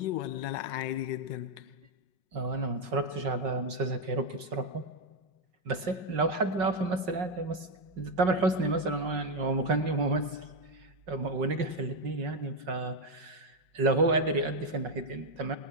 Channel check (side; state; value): left; late; 5.4 ms